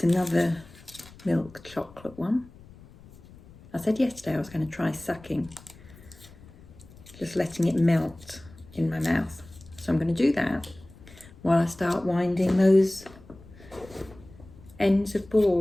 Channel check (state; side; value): noise; left; rumble, 22 dB below the sound